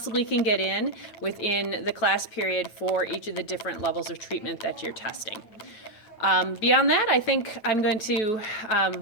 can get in within the class period for each of the different levels of treatment that you're testing. Beyond that, I think I'm going to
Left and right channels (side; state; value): right; late; 9.2 ms